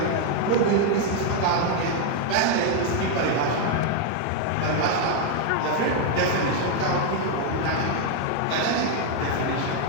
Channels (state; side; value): different; both; correlation 0.01